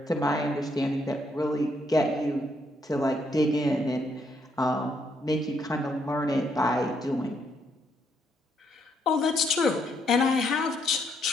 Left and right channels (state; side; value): normal; both; correlation 0.74